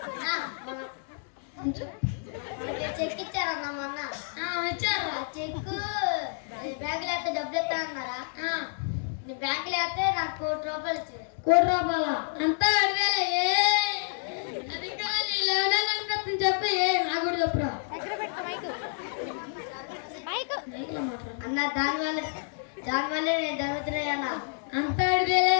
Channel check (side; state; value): right; silent; digital silence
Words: చెక్ ఇచ్చారన్నా మొన్న వచ్చారా చెక్కు బ్యాంకులో అయితే డబ్బులు ఇస్తానన్నారా బ్యాంకులో అయితే నాకు 1 కోటి రూపాయలు ఇచ్చారు 1 కోటి రూపాయల అంతా 2,000 అది కాదు 11 అనిపిస్తుంది చెప్పు నాకు కూడా చెప్పురా మైక్లో మాట్లాడు అన్న దానివల్లే నేను జరుగుతున్నాయన్నా అంతా